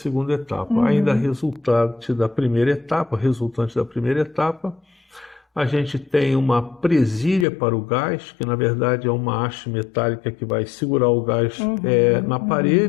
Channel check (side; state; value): right; drops out; at 7.5 s